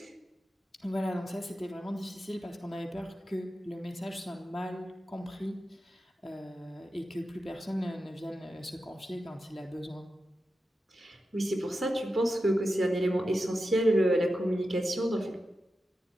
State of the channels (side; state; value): both; normal; correlation 0.90